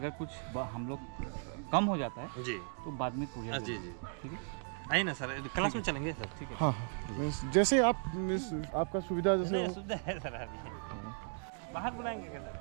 कुछ हम लोग कम हो जाता है जी, तो बाद में पूरा। जी ठीक है, आइए ना सर, क्लास में चलेंगे सर। ठीक है, हाँ जैसे आपका सुविधा जैसे सुविधा है सर। अभी बाहर बुलाएंगे क्या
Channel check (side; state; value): left; silent; 53 dB below the other